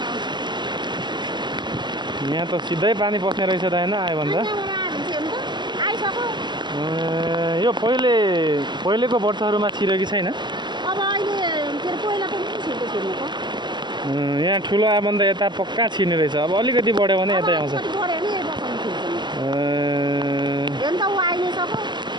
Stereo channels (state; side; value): late; left; 0.21 ms